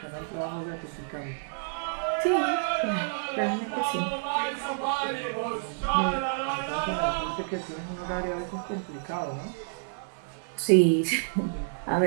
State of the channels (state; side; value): silent; left; digital silence